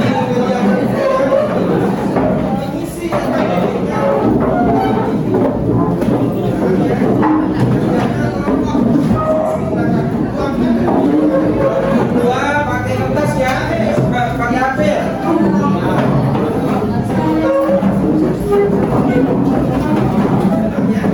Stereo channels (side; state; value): both; identical; correlation 1.00